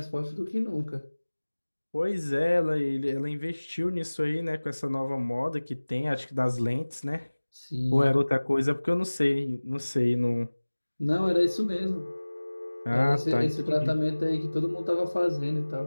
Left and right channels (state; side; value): inverted; both; correlation -1.00